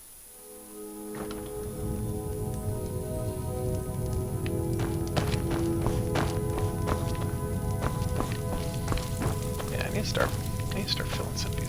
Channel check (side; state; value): both; identical; correlation 1.00